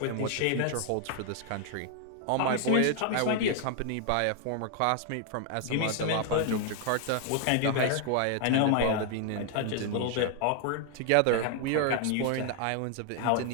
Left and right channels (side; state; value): both; different; correlation 0.00